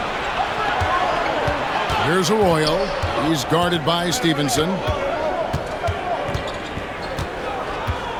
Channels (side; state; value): both; identical; correlation 1.00